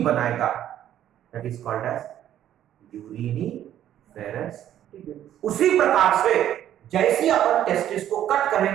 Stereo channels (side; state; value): left; quieter; 11.3 dB